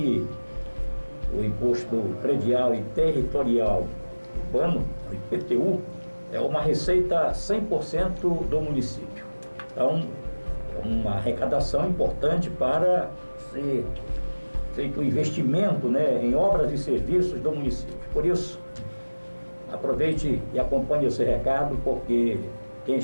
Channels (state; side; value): inverted; both; correlation -1.00